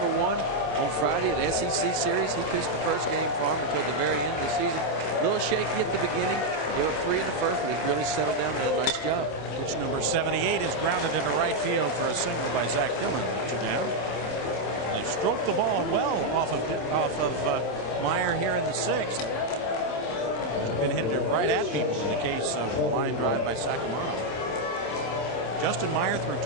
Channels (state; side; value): late; right; 27 ms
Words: Friday in the SEC series. He pitched the first game for him until the very end of the season. A little shaky at the beginning, a little free in the first, but he really settled down and did a nice job. Pitch number 78 is grounded into right field for a single by Zach Dillon. They stroked the ball well off of Meyer here in the 6th. Been hitting it right at people in the case of a line drive by Sacramento. Justin Meyer threw